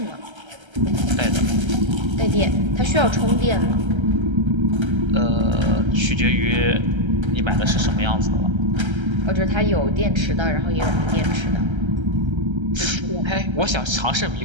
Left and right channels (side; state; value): left; late; 1.3 ms